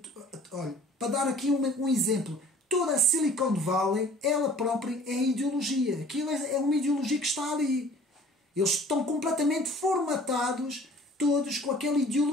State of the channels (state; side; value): normal; both; correlation 0.50